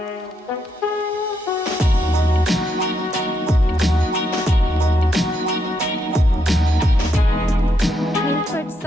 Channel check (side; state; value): both; normal; correlation 0.79